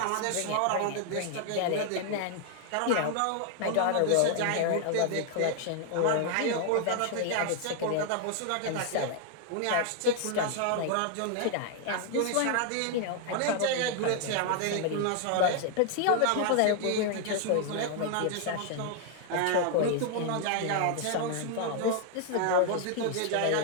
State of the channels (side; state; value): both; different; correlation 0.00